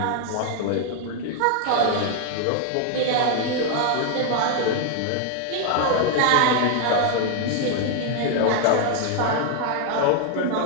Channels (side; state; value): both; different; correlation 0.00